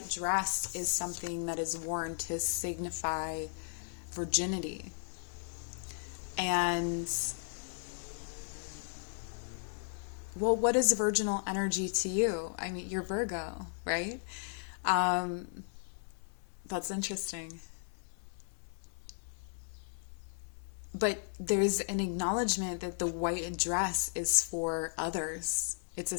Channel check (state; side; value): silent; right; digital silence